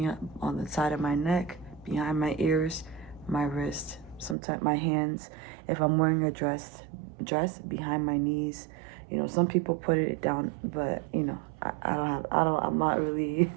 on the side of my neck, behind my ears, my wrist, sometimes my hands. If I'm wearing a dress behind my knees. Some people put it down, but I'm not really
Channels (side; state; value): left; drops out; at 4.4 s